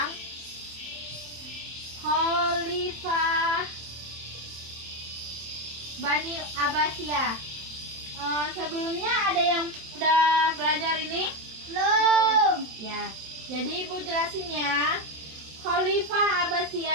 Khalifah Bani Abbasiyah. Sebelumnya ada yang udah belajar ini? Belum. Ya, jadi ibu jelasin ya. Khalifah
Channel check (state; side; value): late; left; 27 ms